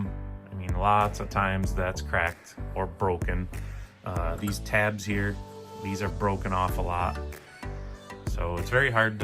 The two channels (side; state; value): both; identical; correlation 1.00